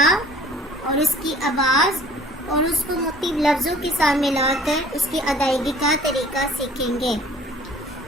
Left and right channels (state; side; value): normal; both; correlation 0.52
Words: اور اس کی آواز اور اس کو مختلف لفظوں کے ساتھ ملا کر اس کی ادائیگی کا طریقہ سیکھیں گے۔